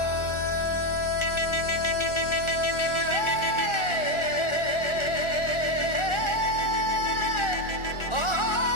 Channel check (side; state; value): right; late; 1.4 ms